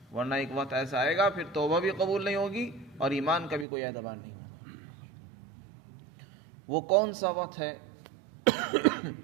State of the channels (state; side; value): drops out; left; at 3.7 s